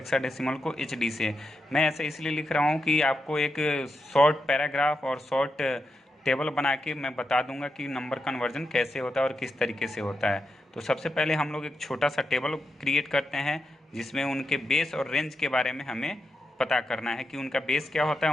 को एच डी से। मैं ऐसे इसलिए लिख रहा हूँ कि आपको एक शॉर्ट पैराग्राफ और शॉर्ट टेबल बना के मैं बता दूंगा कि नंबर कन्वर्जन कैसे होता है और किस तरीके से होता है। तो सबसे पहले हम लोग एक छोटा सा टेबल क्रिएट करते हैं जिसमें उनके बेस और रेंज के बारे में हमें पता करना है कि उनका बेस क्या होता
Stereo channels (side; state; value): both; normal; correlation 0.86